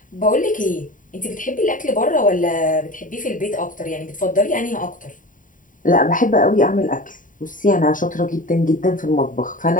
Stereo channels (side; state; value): right; late; 0.38 ms